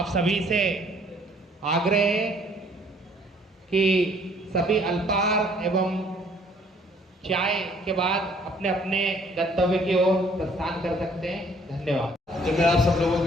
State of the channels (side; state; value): both; normal; correlation 0.60